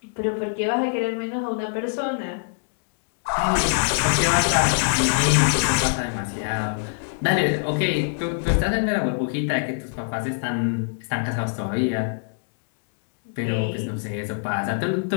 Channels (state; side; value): silent; right; digital silence